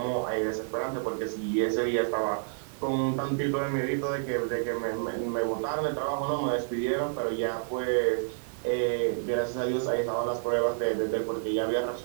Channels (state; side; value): silent; left; 58 dB below the other